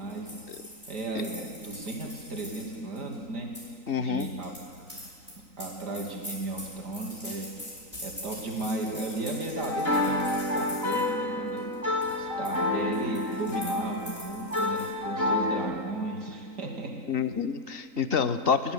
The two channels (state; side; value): late; left; 3.9 ms